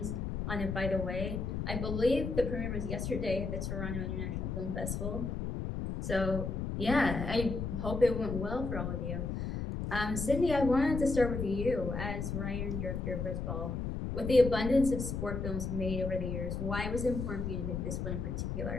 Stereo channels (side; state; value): left; noise; rumble, 3 dB below the sound